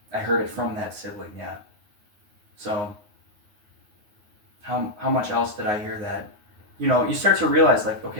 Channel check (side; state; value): left; late; 9.5 ms